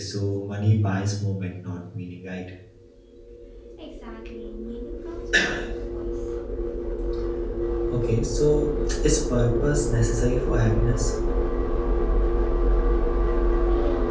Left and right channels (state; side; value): identical; both; correlation 1.00